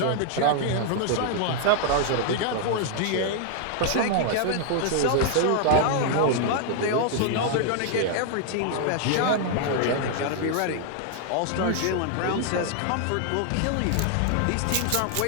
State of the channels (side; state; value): both; different; correlation 0.00